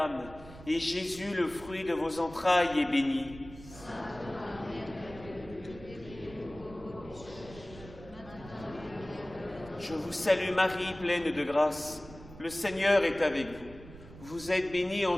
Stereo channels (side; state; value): right; noise; rumble, 17 dB below the sound